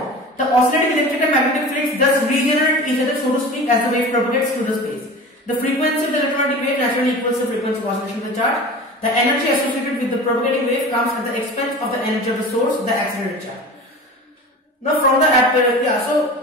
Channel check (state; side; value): normal; both; correlation 0.35